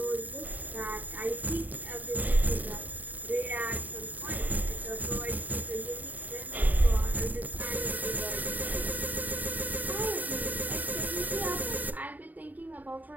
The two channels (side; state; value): left; late; 0.082 ms